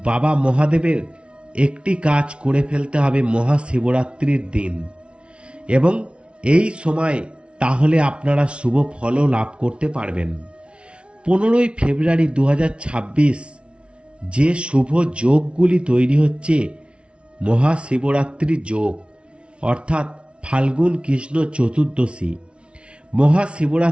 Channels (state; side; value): late; left; 0.059 ms